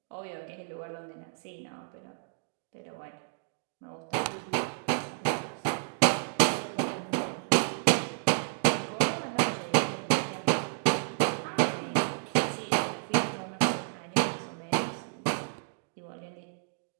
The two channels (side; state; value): left; silent; digital silence